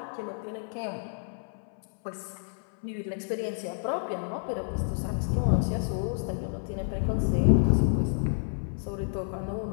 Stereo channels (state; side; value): silent; right; 58 dB below the other